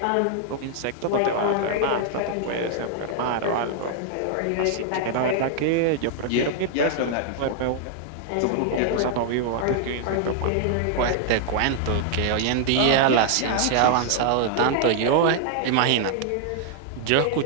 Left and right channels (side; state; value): both; different; correlation 0.00